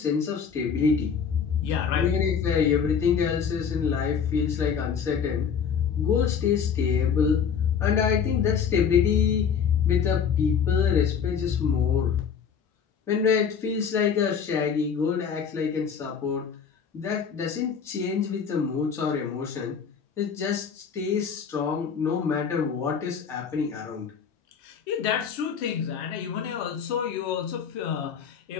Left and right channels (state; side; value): quieter; right; 6.9 dB